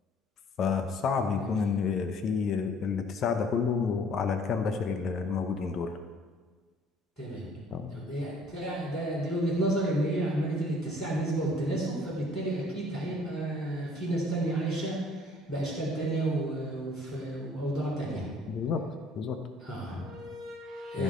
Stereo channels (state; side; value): normal; both; correlation 0.57